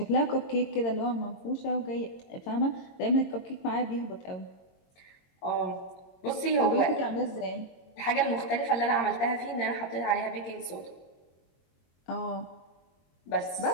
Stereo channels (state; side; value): late; right; 22 ms